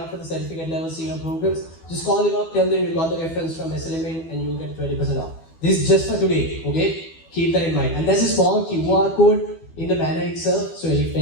for the certificate level senior programs, just call them up, tell them you got the reference from SLMU and you'll get 20% off. This is just for today, okay? Keep that in mind. And there's a small QR code in the banner itself, so if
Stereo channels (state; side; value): late; right; 12 ms